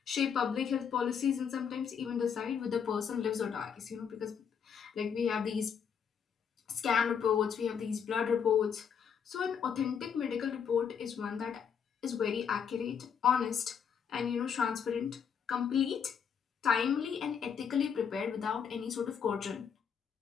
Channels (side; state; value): right; quieter; 7.2 dB